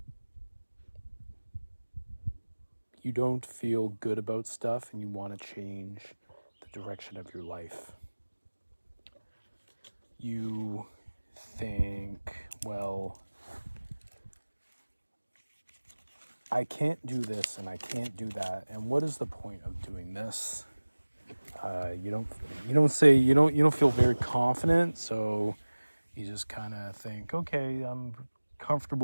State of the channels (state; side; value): inverted; both; correlation -1.00